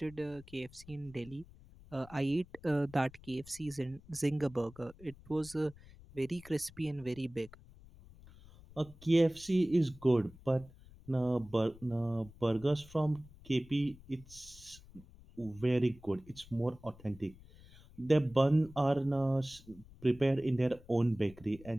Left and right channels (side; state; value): left; noise; rumble, 21 dB below the sound